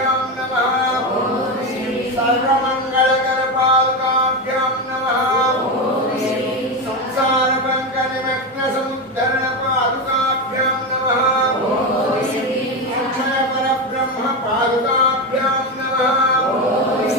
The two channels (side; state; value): both; normal; correlation 0.15